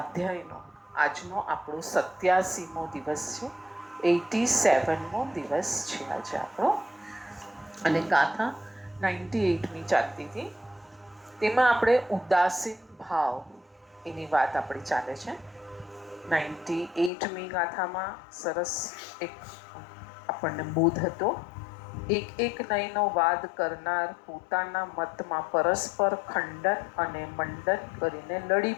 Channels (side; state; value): right; drops out; at 17.1 s